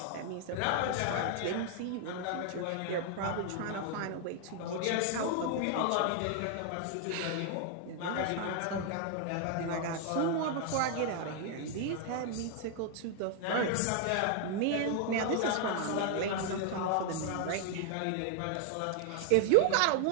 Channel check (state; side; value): different; both; correlation 0.00